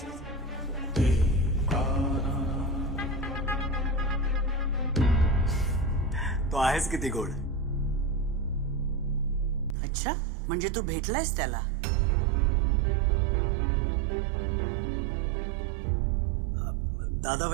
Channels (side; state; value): left; drops out; at 9.8 s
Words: तो आहेस किती गोड. अच्छा, म्हणजे तू भेटलायस त्याला? दादा